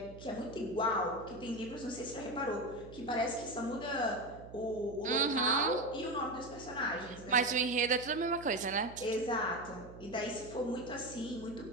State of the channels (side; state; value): right; noise; hum, 16 dB below the sound